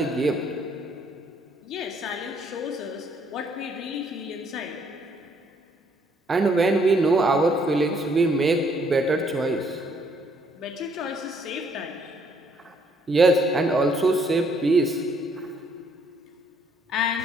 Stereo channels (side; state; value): both; normal; correlation 0.67